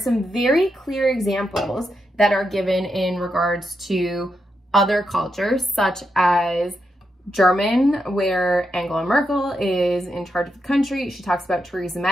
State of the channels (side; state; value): both; normal; correlation 0.84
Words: very clear examples that are given in regards to other cultures, such as German, where Angela Merkel is in charge of the country. She talks about Theresa